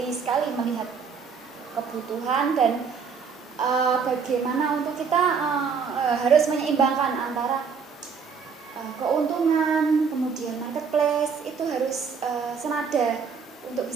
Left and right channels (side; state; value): left; quieter; 5.9 dB